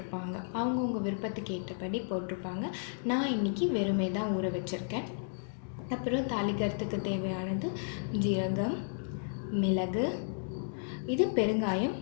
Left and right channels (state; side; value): silent; right; digital silence